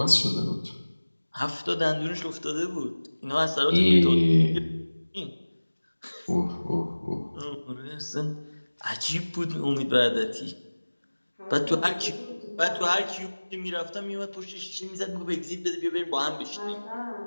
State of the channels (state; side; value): inverted; both; correlation -1.00